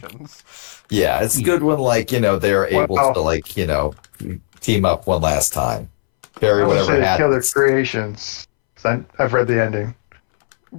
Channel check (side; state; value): right; silent; 68 dB below the other